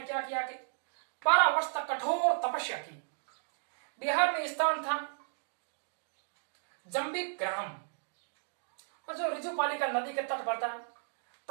क्या किया कि 12 वर्ष तक कठोर तपस्या की। बिहार में स्थान था जंबिक ग्राम, और जो ऋजुपालिका नदी के तट पर था।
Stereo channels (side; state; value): left; silent; digital silence